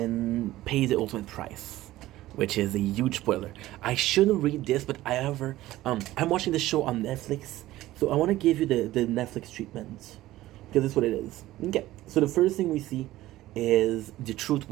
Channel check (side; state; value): left; quieter; 15.9 dB